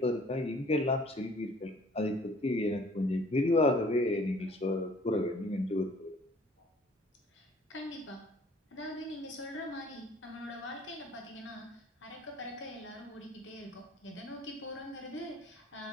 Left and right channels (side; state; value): both; normal; correlation 0.55